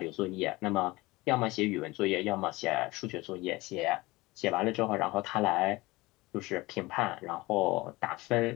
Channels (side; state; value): right; quieter; 21.3 dB